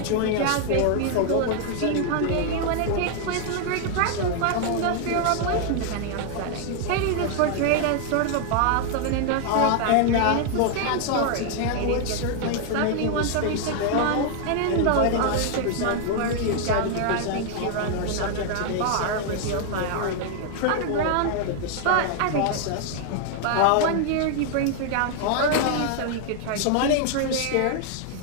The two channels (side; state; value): both; different; correlation 0.00